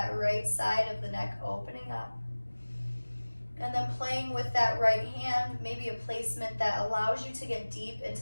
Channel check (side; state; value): both; inverted; correlation -1.00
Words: right side of the neck opening up. And then playing with that right hand, maybe a placement that allows you to get deep